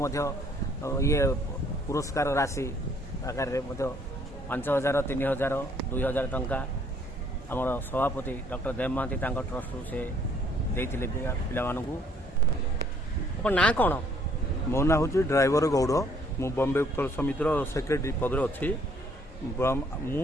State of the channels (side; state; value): both; normal; correlation 0.63